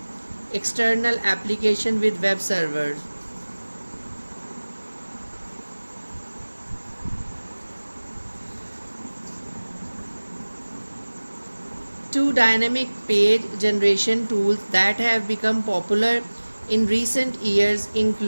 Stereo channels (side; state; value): both; inverted; correlation -1.00